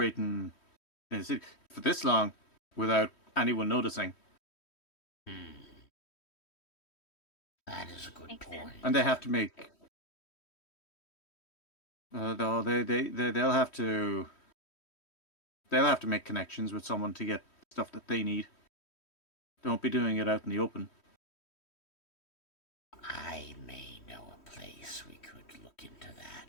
in the city for this long without anyone noticing. That is a good Makes point. sense. And they have to make. They'll have to. They'll have to make connections with someone to get stuff that they need. They won't be doing it out in the open. I may know a place we could look into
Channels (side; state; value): right; late; 3.1 ms